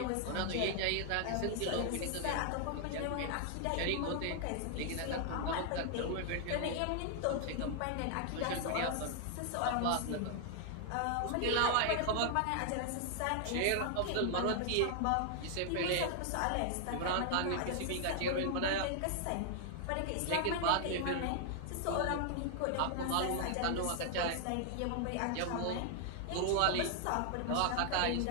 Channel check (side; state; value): both; different; correlation 0.00